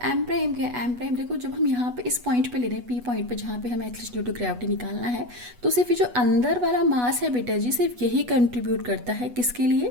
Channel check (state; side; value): late; left; 8.2 ms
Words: एम प्राइम क्या है, एम प्राइम देखो जब हम यहाँ पे इस पॉइंट पे ले रहे हैं, पी पॉइंट पे जहाँ पे हमें एक्सेलरेशन ड्यू टू ग्रेविटी निकालना है, तो सिर्फ ये जो अंदर वाला मास है बेटा जी, सिर्फ यही कंट्रीब्यूट करता है किसके लिए,